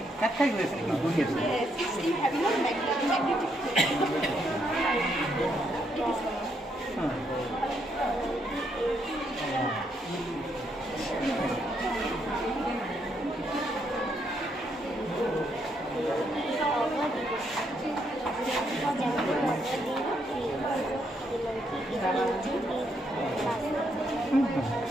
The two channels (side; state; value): both; normal; correlation 0.76